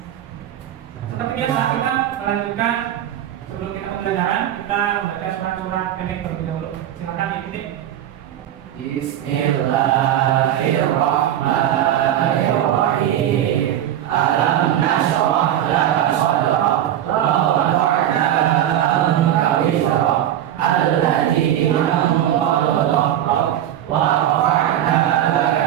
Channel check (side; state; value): left; quieter; 11.5 dB